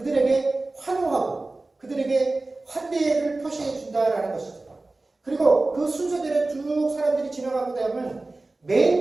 환호하고 그들에게 환대를 표시해 준다라는 것이죠. 그리고 그 순서대로 쭉 사람들이 지나가고 나면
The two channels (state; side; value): quieter; left; 3.1 dB